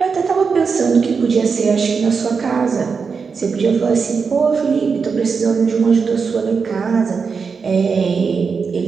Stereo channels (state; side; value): quieter; left; 5.4 dB